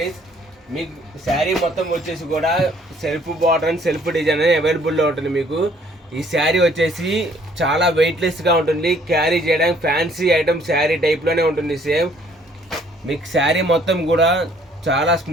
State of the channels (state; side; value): normal; both; correlation 0.61